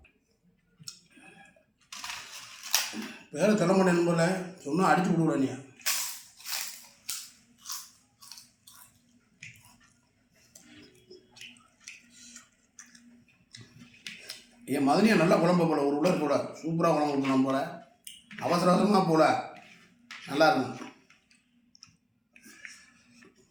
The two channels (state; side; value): identical; both; correlation 1.00